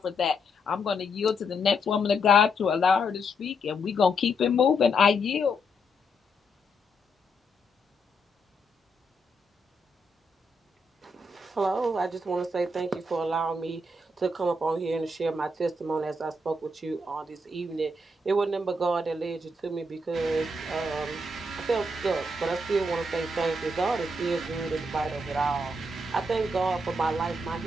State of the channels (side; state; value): both; normal; correlation 0.78